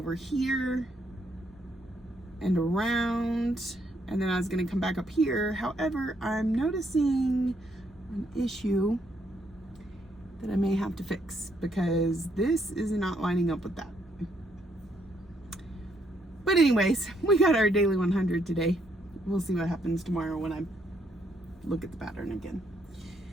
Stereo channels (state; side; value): normal; both; correlation 0.73